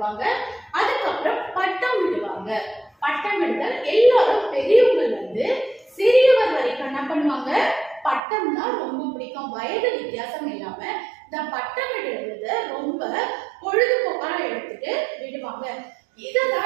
அதுக்கப்புறம் பட்டம் விடுவாங்க. பட்டம் விடுதல் எல்லாரும் பெரியவங்கள்ல இருந்து சிறியவர் வரைக்கும் என்ன பண்ணுவாங்க, பட்டம் தான் ரொம்ப பிடிக்கும். வயது வித்தியாசம் இல்லாம இந்த பட்டம் விடுறத ரொம்ப பொழுதுபோக்கா எடுத்துட்டு விடுவாங்க.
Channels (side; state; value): left; drops out; at 8.2 s